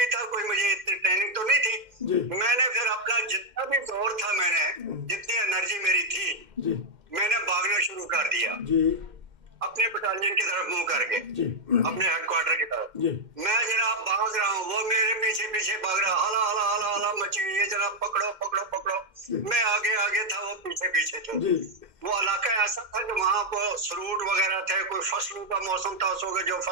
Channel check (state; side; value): late; left; 2.1 ms